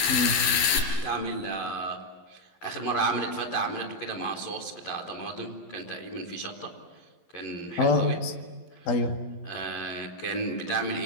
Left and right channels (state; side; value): late; right; 11 ms